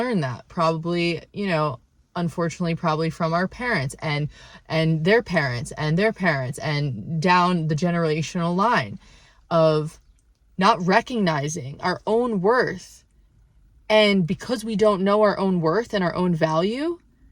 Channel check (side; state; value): both; identical; correlation 1.00